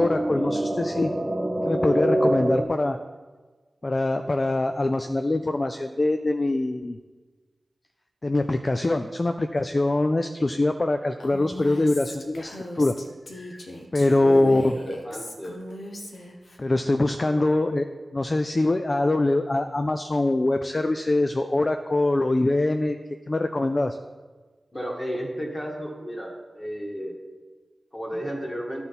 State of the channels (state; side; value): normal; both; correlation 0.98